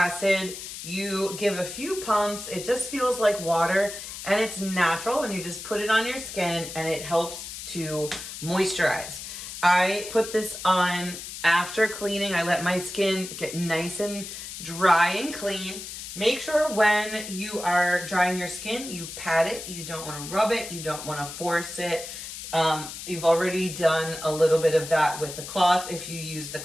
You give a few pumps. It just feels like water, and it's natural, and you just put it on your skin and it helps to moisturize. I put this on after cleaning. I let my skin get nice and dry and clean. Make sure when you are drying your skin, you pat it. You don't want to rub it. You don't want to force it. You've already done a little bit of that with the cloth if you use the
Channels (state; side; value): noise; left; hiss, 10 dB below the sound